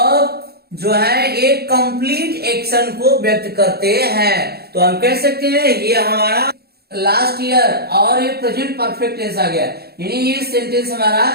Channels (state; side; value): late; left; 0.46 ms